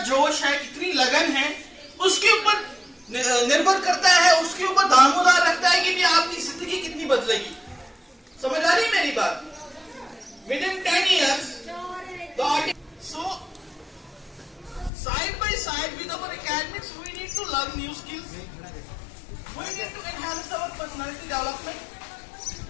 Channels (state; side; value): drops out; right; at 14.9 s